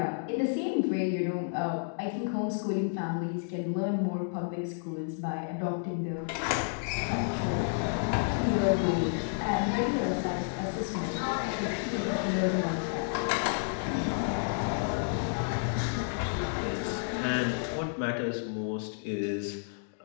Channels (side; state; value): right; silent; digital silence